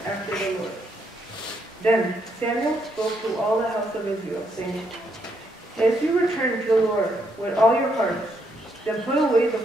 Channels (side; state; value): both; normal; correlation 0.76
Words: after the Lord. Then Samuel spoke to all the house of Israel, saying, If you return to the Lord with all your hearts, then put away the